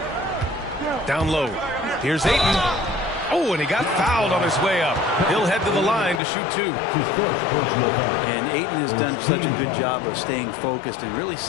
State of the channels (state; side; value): drops out; right; at 6.2 s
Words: Down low. Here's Ayton. Oh, and he got fouled on his way up. He'll head to the line to shoot 2. And Ayton has done such a good job of staying focused and really